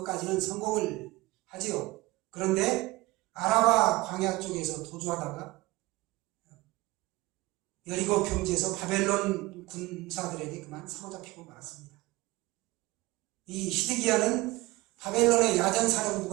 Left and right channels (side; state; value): left; quieter; 20.3 dB